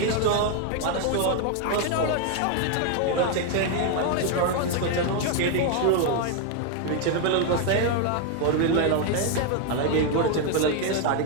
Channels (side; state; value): both; different; correlation 0.01